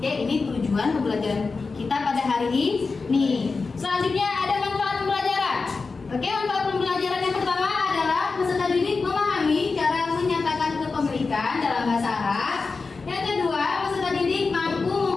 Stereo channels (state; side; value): quieter; right; 4.3 dB